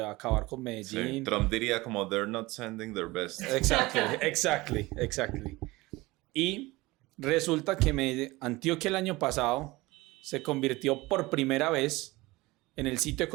acabar con Sí. Medellín. Trump diría como they're not sending their best. Exactly. Y resulta que Antioquia el año pasado se convirtió por primera vez en el sitio de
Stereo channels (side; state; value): left; quieter; 21.0 dB